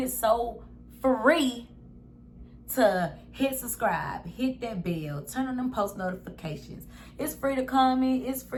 so free to hit subscribe, hit that bell, turn on them post notifications. It's free to comment, it's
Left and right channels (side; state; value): both; identical; correlation 1.00